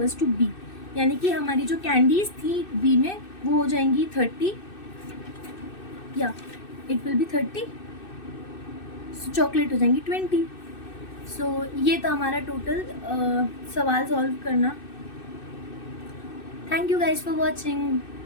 to B, यानी कि हमारी जो कैंडीज थी बी में वो हो जाएंगी 30, या it will B 30, so chocolate हो जाएंगी 20। सो ये था हमारा टोटल सवाल सॉल्व करना। Thank you guys for watching,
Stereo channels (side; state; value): right; late; 2.6 ms